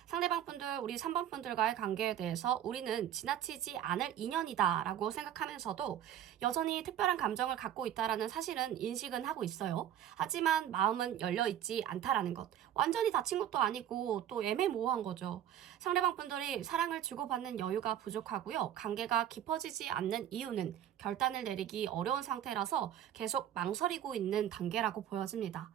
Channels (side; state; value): left; quieter; 10.6 dB